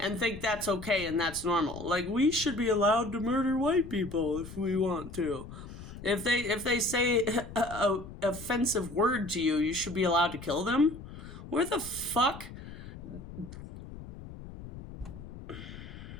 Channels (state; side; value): noise; left; rumble, 13 dB below the sound